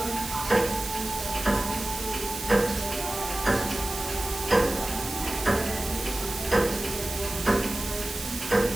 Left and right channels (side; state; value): right; noise; hiss, 9 dB below the sound